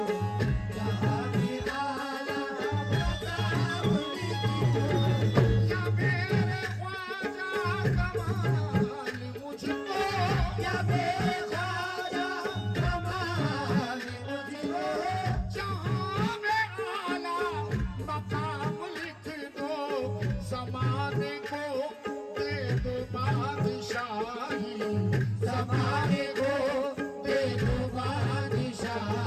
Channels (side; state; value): both; identical; correlation 1.00